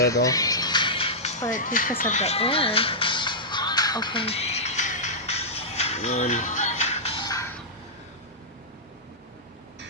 all. But because of the air. Okay.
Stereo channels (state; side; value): normal; both; correlation -0.12